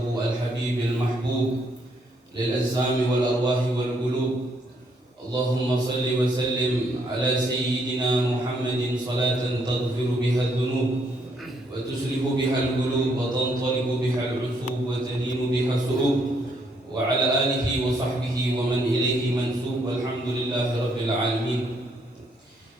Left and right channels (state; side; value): normal; both; correlation 0.72